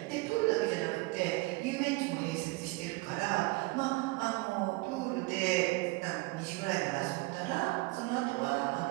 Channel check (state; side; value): quieter; left; 23.5 dB